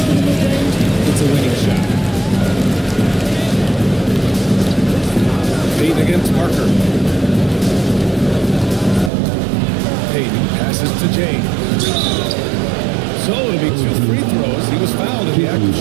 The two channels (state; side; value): drops out; left; at 9.1 s